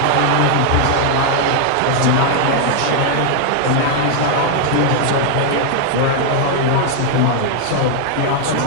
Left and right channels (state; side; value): different; both; correlation 0.00